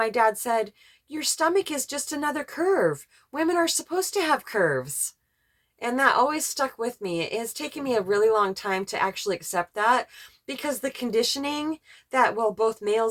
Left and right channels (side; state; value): both; identical; correlation 1.00